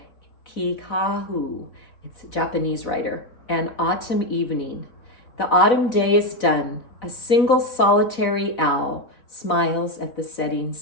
Kikahu. It's a Japanese writer. An autumn evening. The autumn day is done. A single solitary owl smiles at the setting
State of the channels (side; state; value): right; late; 4.1 ms